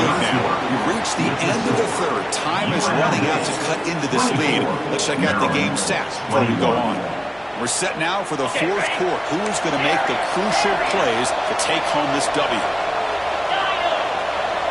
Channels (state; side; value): identical; both; correlation 1.00